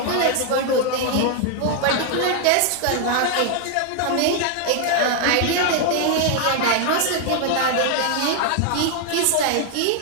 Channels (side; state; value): both; different; correlation 0.00